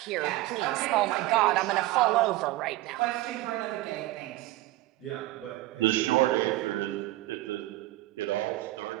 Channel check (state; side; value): quieter; left; 17.5 dB